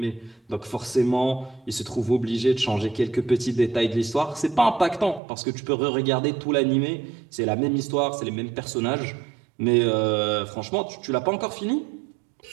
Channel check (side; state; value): left; drops out; at 5.2 s